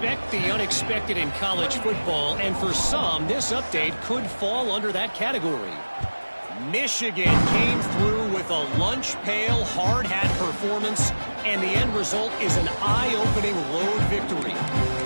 the unexpected in college football, and for some, this update could fall under that category. Michigan came through with a lunch pail, hard hat performance, and the end result is an eye-opening road victory.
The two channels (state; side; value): inverted; both; correlation -1.00